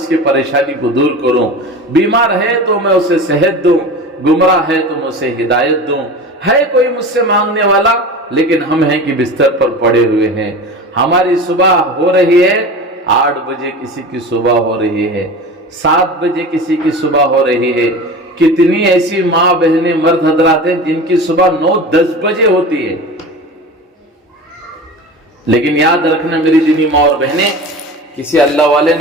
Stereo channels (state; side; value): normal; both; correlation 0.33